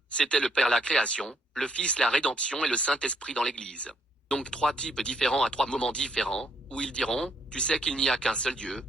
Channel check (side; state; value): both; normal; correlation 0.70